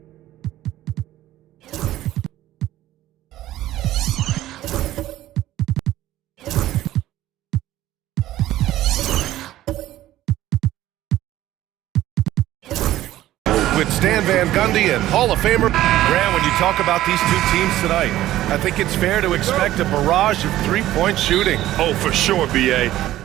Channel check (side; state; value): left; quieter; 14.4 dB